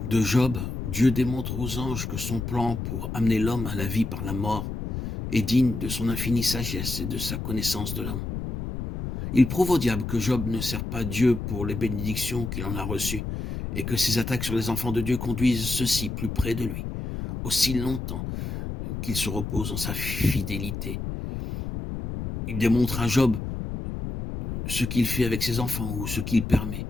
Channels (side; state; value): left; noise; rumble, 5 dB below the sound